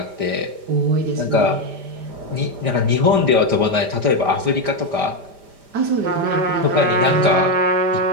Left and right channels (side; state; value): left; late; 5.0 ms